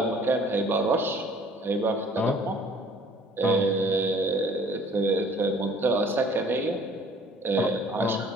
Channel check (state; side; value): normal; both; correlation 0.54